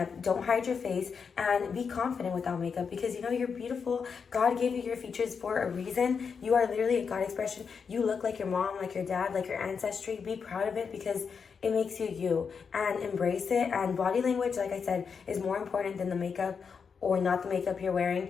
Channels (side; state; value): right; quieter; 6.0 dB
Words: don't hide your face, and be confident without makeup, because you know you're beautiful. God gave you your features for a reason. You are literally a God expression. You look like your mom, like your dad, like your ancestry. Be proud of it, because it makes you you, and embrace it. And body language, like I said, is more important than the makeup or not the makeup you're